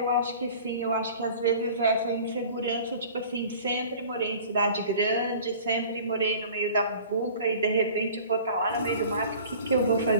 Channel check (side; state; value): both; inverted; correlation -0.45